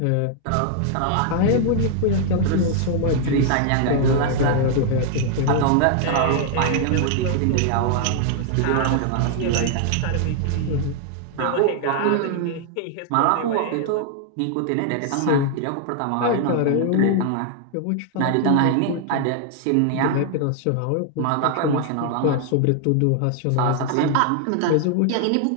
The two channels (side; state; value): both; different; correlation 0.00